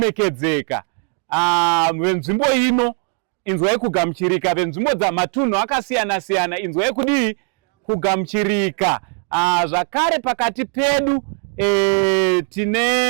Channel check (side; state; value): left; quieter; 38.8 dB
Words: venzvimbo ino. Inzwai kugamuchirika venzvimbo dzamatunhu akasiyana siyana. Inzwai kudii kugamuchirika. Zvakare pakati pedu